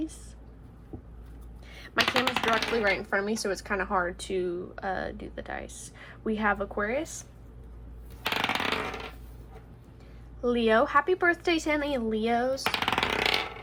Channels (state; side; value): identical; both; correlation 1.00